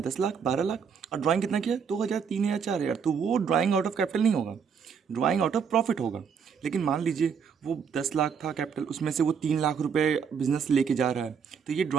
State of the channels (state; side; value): quieter; left; 6.6 dB